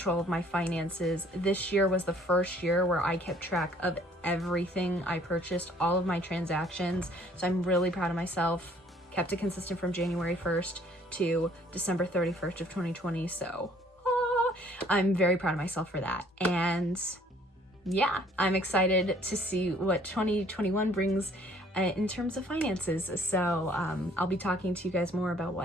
of my finances. This year was the first year where I kept track of everything I purchased, all of my transactions. So I'm really proud of myself. Kept it consistent from January 1st to December 31st of 2020. So I'm very proud of myself for that. And yeah, I'm excited to see what 2021 brings in terms of finances. So I'll be talking to you guys more about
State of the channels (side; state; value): both; normal; correlation 0.59